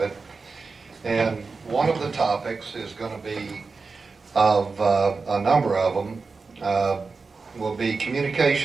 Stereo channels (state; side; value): quieter; left; 4.4 dB